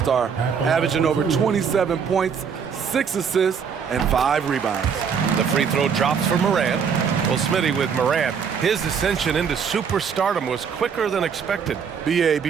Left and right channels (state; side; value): quieter; left; 6.7 dB